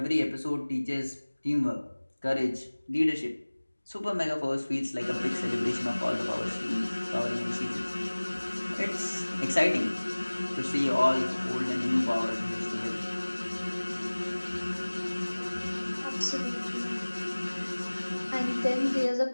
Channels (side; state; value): both; inverted; correlation -1.00